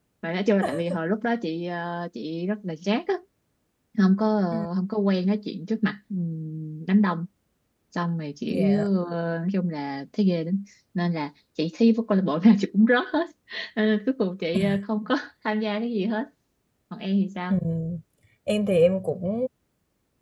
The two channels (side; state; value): both; identical; correlation 1.00